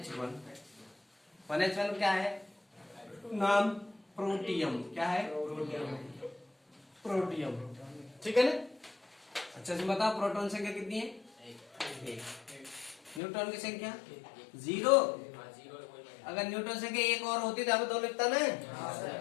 1H1 क्या है, नाम प्रोटियम, क्या है, प्रोटियम। ठीक है ना। अच्छा जी बताओ प्रोटॉन संख्या कितनी है, 1। न्यूट्रॉन की संख्या 0। अगर न्यूट्रॉन संख्या 1 और होती तो अब 2 लिखता ना,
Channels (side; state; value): right; drops out; at 13.2 s